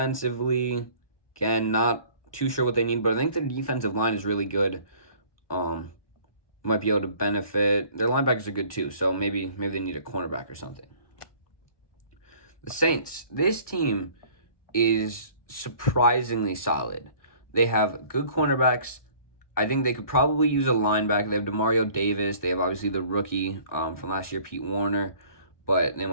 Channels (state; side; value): late; right; 1.2 ms